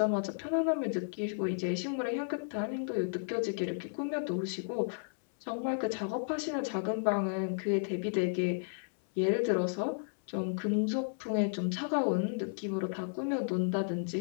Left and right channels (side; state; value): right; silent; 56 dB below the other